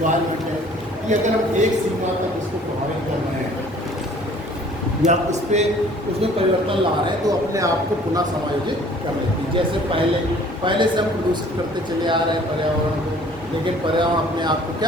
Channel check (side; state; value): both; normal; correlation 0.53